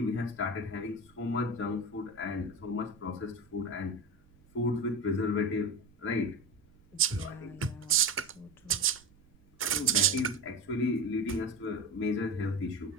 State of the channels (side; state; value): right; noise; rumble, 28 dB below the sound